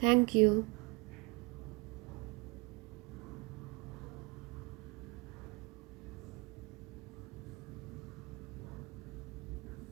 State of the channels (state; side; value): quieter; left; 27.0 dB